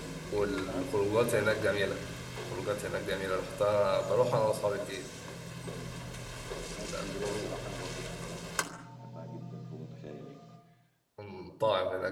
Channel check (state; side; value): identical; both; correlation 1.00